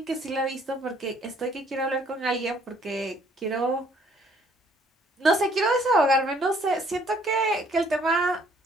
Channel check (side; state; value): both; normal; correlation 0.62